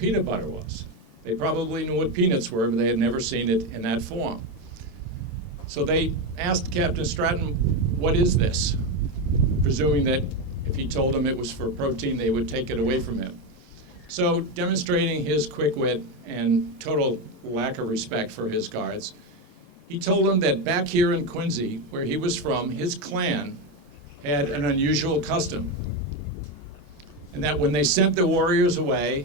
butter was. They probably knew what peanuts were, but they had never seen it in that form. So they asked Captain Stratton, what is this? Presuming that if he told them it was for protein, they would take it away from him. So demonstrating his quick wit and total lack of respect for his guards, he told them that back here in Quincy, where he was from, his clan had an unusual custom. And that when they sent the warriors away,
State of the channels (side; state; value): both; normal; correlation 0.12